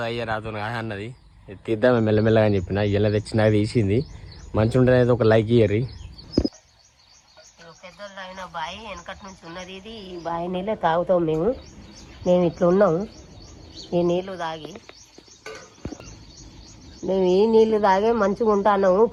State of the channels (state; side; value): identical; both; correlation 1.00